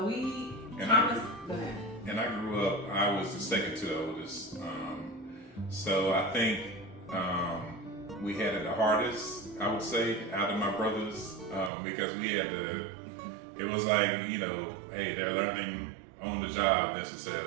go ahead. And I grew up, I was the second to the oldest. So I think we had it the hardest, I would say, out of my brothers, because we had it was like, hey, they're learning on the job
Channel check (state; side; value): drops out; left; at 11.7 s